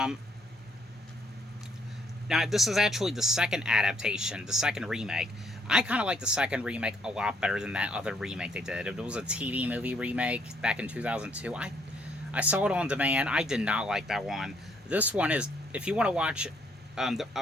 this is actually the second adaptation, the second remake. I kind of like the second remake a lot better than that other remake they did. It was a TV movie remake back in 2002. I saw it on demand. I did not like that one. This one is, if you want to watch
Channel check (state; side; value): normal; both; correlation 0.68